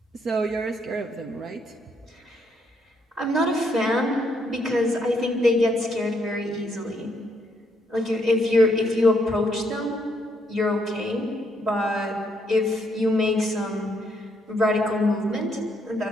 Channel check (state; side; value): normal; both; correlation 0.73